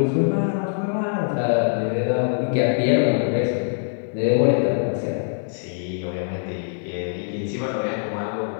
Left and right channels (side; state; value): right; silent; 57 dB below the other